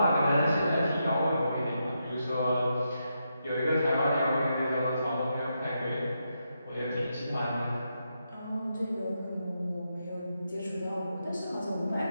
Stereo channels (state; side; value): inverted; both; correlation -0.83